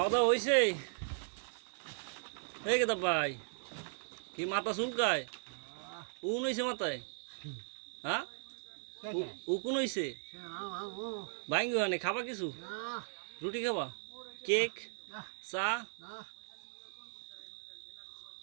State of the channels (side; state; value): left; silent; 53 dB below the other